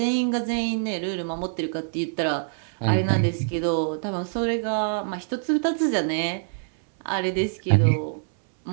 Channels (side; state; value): left; silent; 62 dB below the other